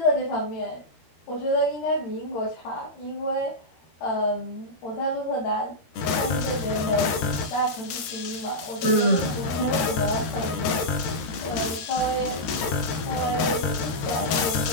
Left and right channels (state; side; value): late; right; 13 ms